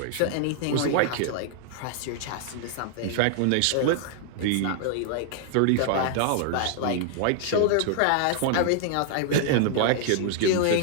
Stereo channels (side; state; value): both; different; correlation -0.01